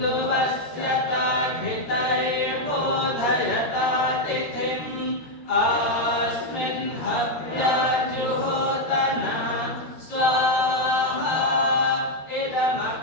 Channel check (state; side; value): late; right; 13 ms